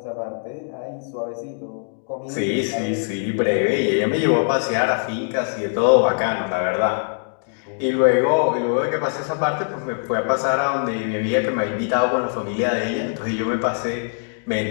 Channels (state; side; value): silent; right; digital silence